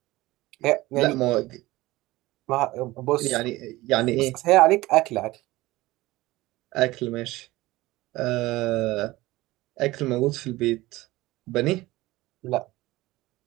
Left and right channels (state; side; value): quieter; left; 18.9 dB